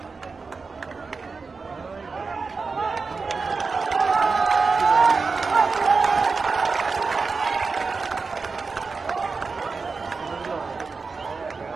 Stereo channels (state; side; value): quieter; left; 4.5 dB